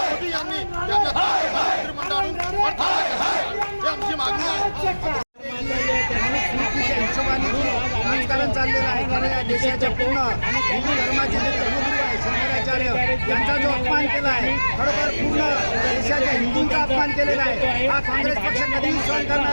यांनी त्यांना मंत्रिमंडळातून ही आमची मागणी आहे। राजकारण चाललेलं आहे, कारण या देशाच्या पूर्ण हिंदू धर्माचे जे धर्मगुरू आहे शंकराचार्य यांचा जो अपमान केला आहे, खरोखर पूर्ण देशाच्या हिंदूंचा अपमान केलेला आहे, हा काँग्रेस पक्ष कधीही सहन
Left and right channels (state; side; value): inverted; both; correlation -1.00